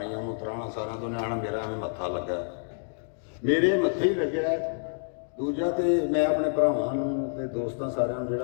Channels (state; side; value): silent; right; digital silence